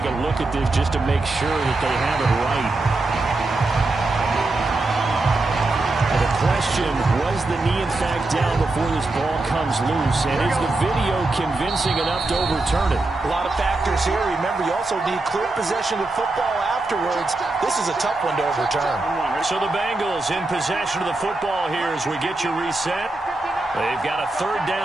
a look at this just to make sure that they have it right. And the question, was the knee in fact down before this ball comes loose? And is the video convincing enough to overturn it? A lot of factors here. Remember, you also need clear possession of football afterwards. This is a tough one to overturn. So the Bengals in possession of the football here as we get you reset. They've got a 3rd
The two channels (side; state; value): left; quieter; 3.1 dB